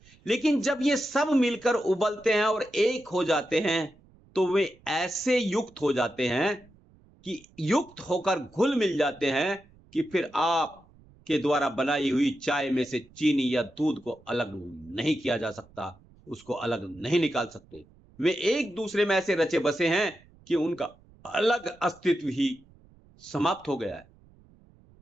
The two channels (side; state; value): right; noise; rumble, 28 dB below the sound